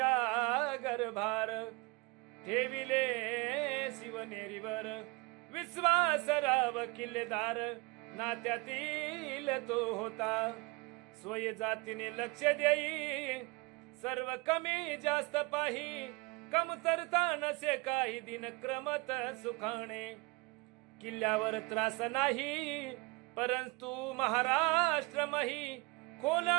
गर्भार ठेविले शिवनेरीवर. विश्वासराव किल्लेदार नात्यातील तो होता. स्वय जातीने लक्ष देई सर्व कमी जास्त पाही. कमतरता नसे काही दिन क्रमत सुखाणे. किल्ल्यावर त्रास नाही परंतु महाराष्ट्र मही. खोल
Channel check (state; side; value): quieter; left; 25.6 dB